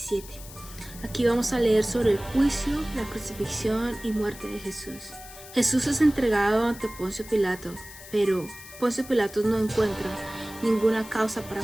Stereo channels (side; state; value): left; noise; hiss, 16 dB below the sound